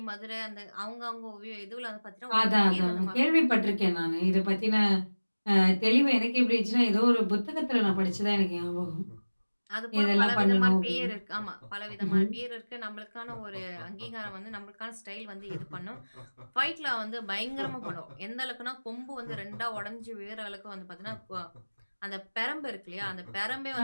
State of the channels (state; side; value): inverted; both; correlation -1.00